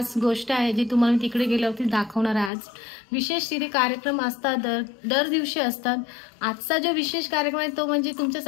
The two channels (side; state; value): right; drops out; at 2.5 s